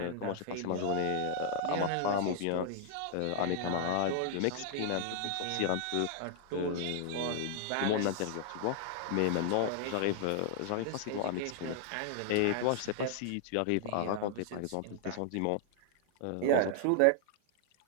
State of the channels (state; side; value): different; both; correlation -0.01